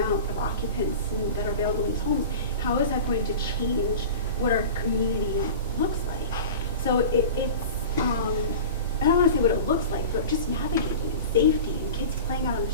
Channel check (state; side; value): inverted; both; correlation -0.34